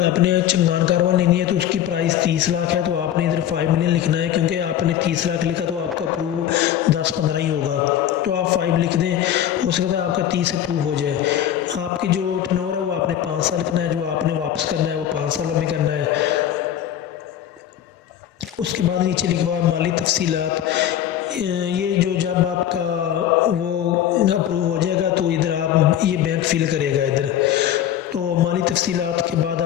चंगान कारवां लेनी है तो उसकी प्राइस 30 लाख है, तो आपने इधर 5 मिलियन लिखना है, क्योंकि आपने 30 लाख लिखा तो आपका प्रूव 10-15 ही होगा। تو آپ 5 لکھ دیں، ہو سکتا ہے آپ کا 30 اپروو ہو جائے۔ آپ کی جو ٹرن اوور ہے وہ آپ نے 5 سال لکھنا ہے، جو آپ نے واپس کرنا ہے وہ 5 سالوں میں کرنا ہے۔ اس کے بعد نیچے لکھا ہوا ہے مالی تفصیلات، یہ جو جب آپ کا وہ اپروو ہو جائے گا تو ادھر آپ یہ بینک فل کرے گا ادھر۔ تو مالی تفصیلات کے بعد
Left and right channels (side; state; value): right; quieter; 10.8 dB